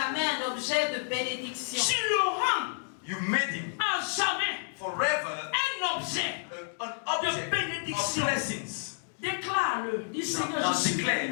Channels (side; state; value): right; silent; digital silence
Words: un objet de bénédiction. Tu le rends You made him à jamais forever un objet. an object De bénédiction. of blessings. Déclare-le. Dis Seigneur, Now je suis declare,